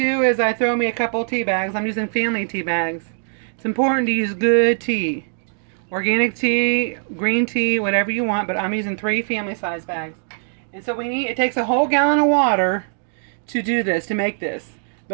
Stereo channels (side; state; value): left; silent; 65 dB below the other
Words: is I throw me a couple tea bags. I'm using family tea bags. It's important to use good tea. Organic tea, green tea, whatever you want, but I'm using 3 family size bags. And so it takes a whole gallon of water to do this, to make this.